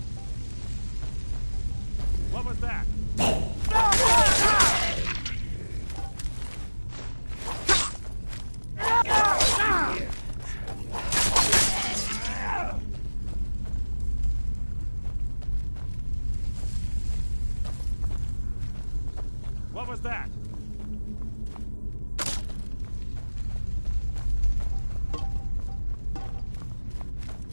What was that? What was that?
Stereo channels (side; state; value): both; inverted; correlation -1.00